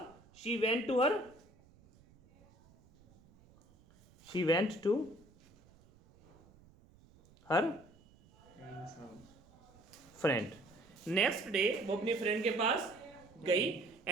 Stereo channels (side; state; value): right; noise; rumble, 27 dB below the sound